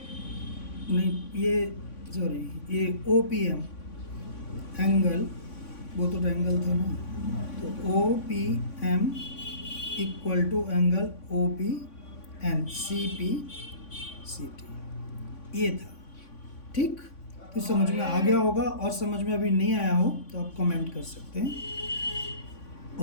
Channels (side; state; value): right; late; 3.5 ms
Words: नहीं ये सॉरी ये OPM एंगल, वो तो एंगल था ना, तो OPM equal to angle OPN CPCT, ये था, ठीक। तो समझ में आ गया होगा, और समझ में अभी नहीं आया हो तो आप कमेंट कर सकते हैं